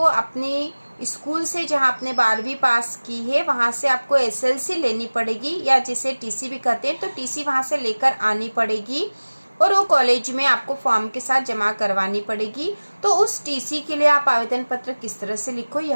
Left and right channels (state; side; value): inverted; both; correlation -1.00